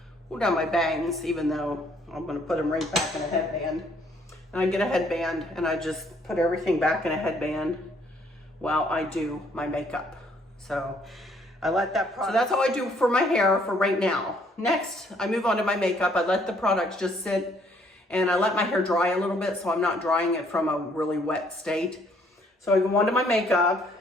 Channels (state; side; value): normal; both; correlation 0.65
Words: pull down my bangs, even though I'm gonna put them right back in a headband. And I get a headband and I just put everything back in a headband while I do my makeup. So I let that product, so that's how I do for my hair for right now. Next, I move on to my makeup. I let the products just sit and I let my hair dry a little bit so I'm not drying it from a really wet state. So I go on to my makeup